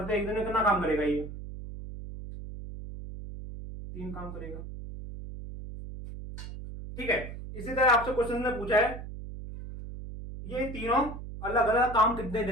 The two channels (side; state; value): right; noise; hum, 10 dB below the sound